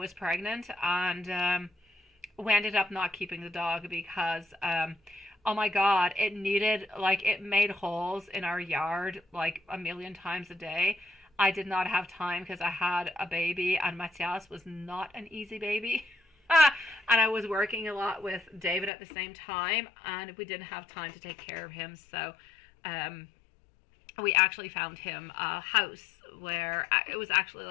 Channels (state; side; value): drops out; right; at 18.9 s